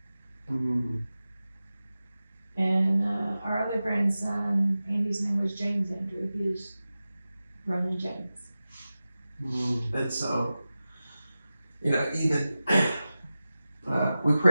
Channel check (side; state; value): both; inverted; correlation -0.94